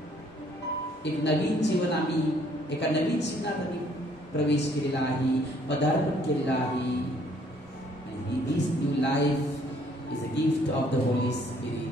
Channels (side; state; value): both; normal; correlation 0.63